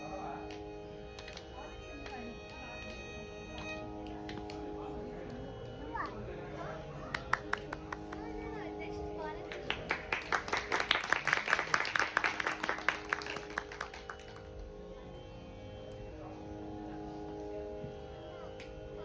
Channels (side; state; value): both; identical; correlation 1.00